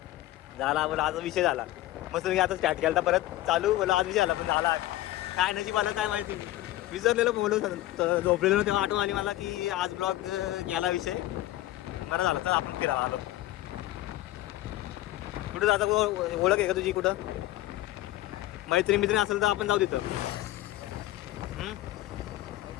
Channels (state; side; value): quieter; right; 15.7 dB